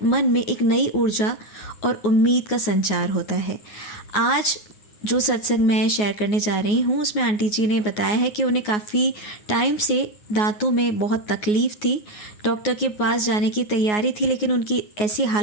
मन में एक नई ऊर्जा और उम्मीद का संचार होता है। आज जो सत्संग मैं शेयर करने जा रही हूँ उसमें आंटी जी ने बताया है कि उन्हें काफ़ी टाइम से दांतों में बहुत तकलीफ़ थी। डॉक्टर के पास जाने की तैयारी थी, लेकिन उनकी ऐसी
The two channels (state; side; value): late; right; 9.5 ms